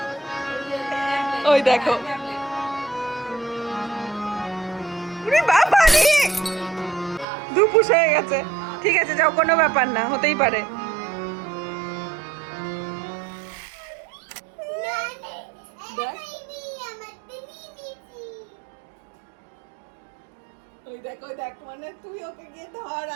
ওই দেখো, ওরে বাবা রে, দুপুস হয়ে গেছে। ঠিক আছে, যাও, কোনো ব্যাপার না, হতেই পারে। ওই দেখ, ওই দেখ, মানে তুই ওকে গিয়ে ধর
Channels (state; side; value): drops out; left; at 7.2 s